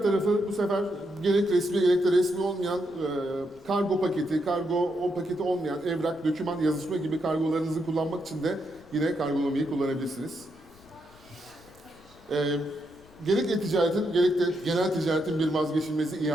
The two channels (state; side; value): noise; left; rumble, 26 dB below the sound